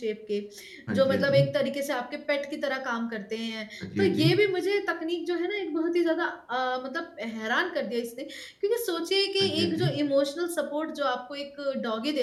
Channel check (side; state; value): both; identical; correlation 1.00